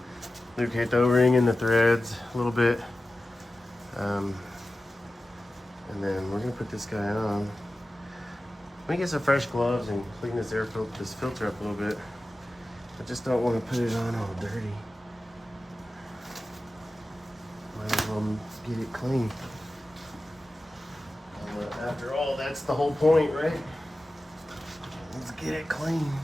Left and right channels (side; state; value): both; normal; correlation 0.94